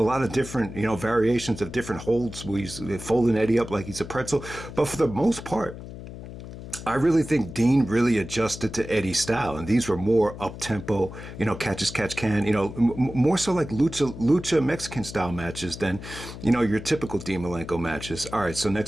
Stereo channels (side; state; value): left; noise; hum, 12 dB below the sound